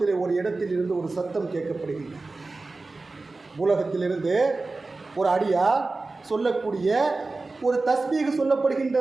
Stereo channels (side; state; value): left; quieter; 3.5 dB